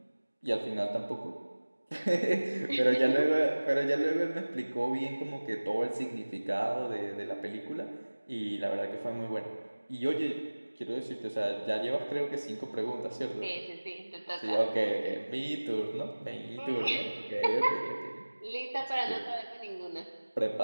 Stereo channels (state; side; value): inverted; both; correlation -1.00